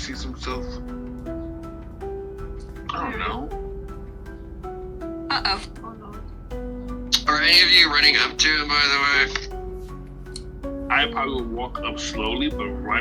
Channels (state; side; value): identical; both; correlation 1.00